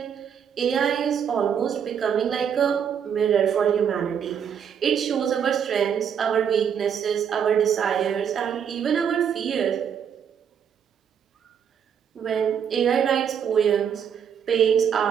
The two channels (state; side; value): quieter; left; 7.9 dB